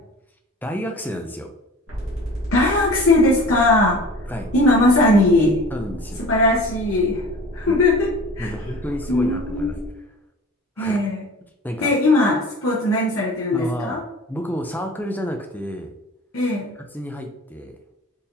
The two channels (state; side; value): normal; both; correlation 0.42